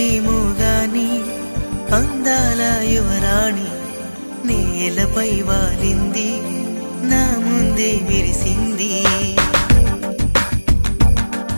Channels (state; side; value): inverted; both; correlation -1.00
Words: గాని అందాల యువరాణి నేలపై వాలింది నా ముందే మెరిసింది